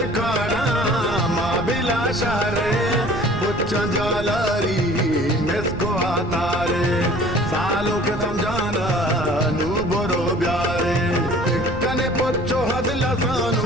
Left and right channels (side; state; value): right; noise; rumble, 10 dB below the sound